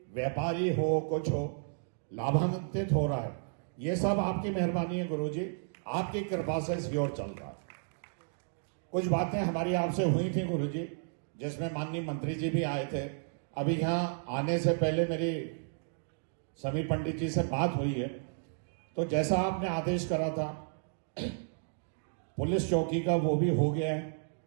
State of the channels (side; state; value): left; silent; digital silence